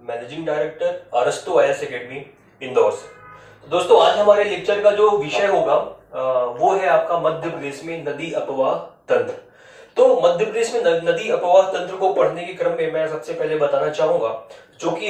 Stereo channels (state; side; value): identical; both; correlation 1.00